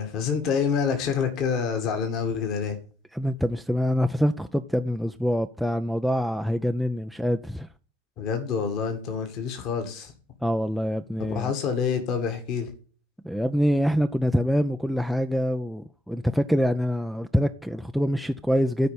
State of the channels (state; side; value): normal; both; correlation 0.78